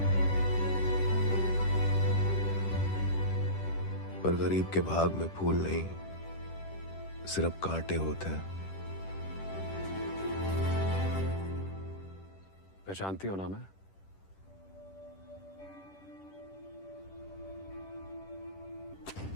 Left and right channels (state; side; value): late; right; 10 ms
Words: पर गरीब के भाग में फूल नहीं, सिर्फ कांटे होते हैं। पहचानती हो ना मैं?